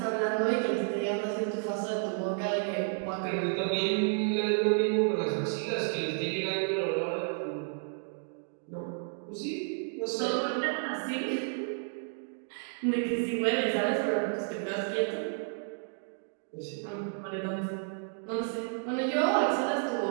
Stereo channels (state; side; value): silent; left; 57 dB below the other